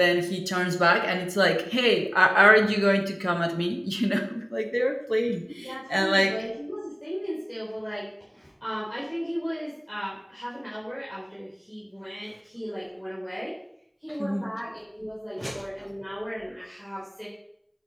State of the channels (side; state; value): both; identical; correlation 1.00